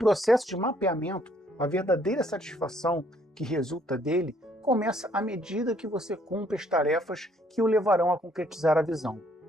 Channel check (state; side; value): normal; both; correlation 0.66